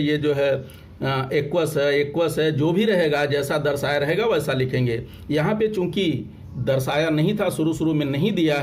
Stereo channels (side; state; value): both; identical; correlation 1.00